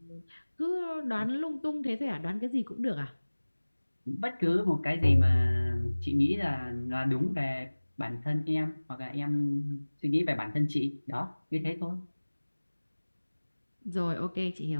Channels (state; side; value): inverted; both; correlation -1.00